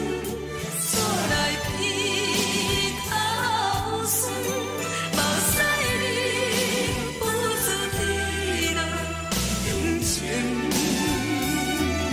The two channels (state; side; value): identical; both; correlation 1.00